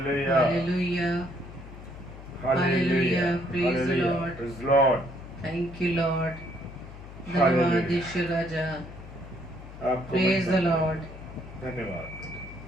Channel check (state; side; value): noise; left; hum, 15 dB below the sound